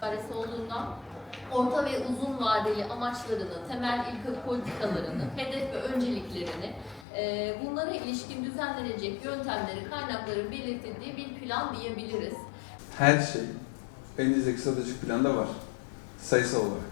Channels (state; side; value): drops out; right; at 7.1 s